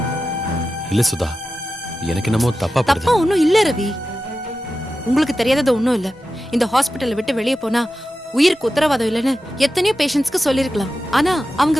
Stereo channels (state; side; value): normal; both; correlation 0.93